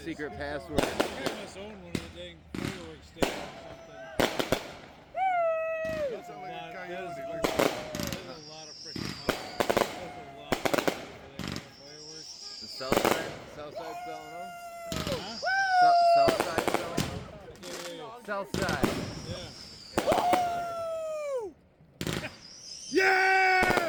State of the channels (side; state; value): both; identical; correlation 1.00